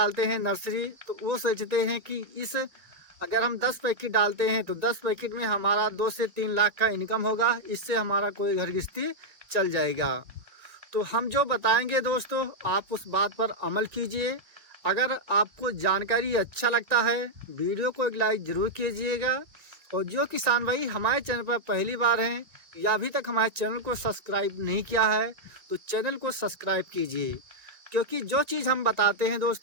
हैं नर्सरी, तो वो सोचते हैं कि इस अगर हम 10 पैकेट डालते हैं तो 10 पैकेट में हमारा 2 से 3 लाख का इनकम होगा, इससे हमारा कोई घर गृहस्थी चल जाएगा। तो हम जो बताएंगे दोस्तों, आप उस बात पर अमल कीजिए। अगर आपको जानकारी अच्छा लगता है, वीडियो को एक लाइक ज़रूर कीजिएगा। और जो किसान भाई हमारे चैनल पर पहली बार हैं या अभी तक हमारे चैनल को सब्सक्राइब नहीं किया है, तो चैनल को सब्सक्राइब कीजिए। क्योंकि जो चीज़ हम बताते हैं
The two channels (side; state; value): left; late; 1.9 ms